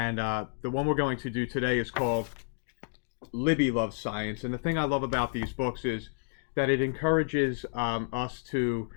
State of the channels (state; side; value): silent; right; digital silence